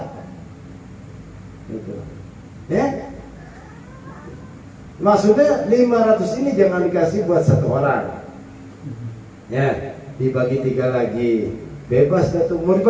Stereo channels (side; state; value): both; identical; correlation 1.00